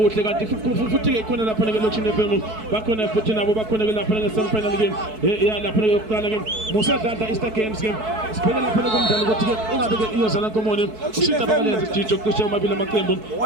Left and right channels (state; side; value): late; left; 4.6 ms